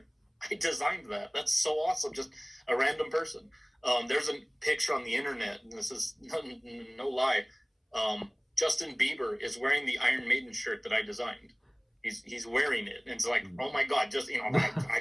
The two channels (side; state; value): both; identical; correlation 1.00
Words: I designed that. That's so awesome. Just a random person. There's a picture on the internet, and this is no lie. Justin Bieber is wearing the Iron Maiden shirt that I designed. He's wearing it, and it's like, oh my God, I